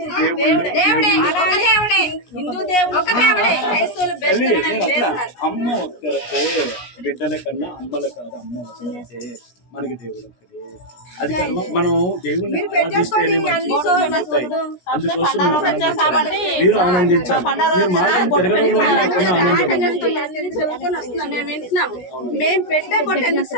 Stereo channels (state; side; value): late; right; 17 ms